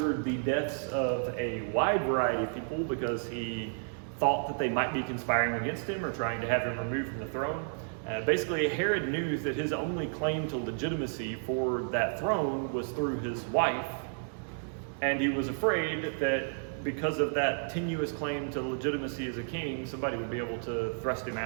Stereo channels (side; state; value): left; silent; digital silence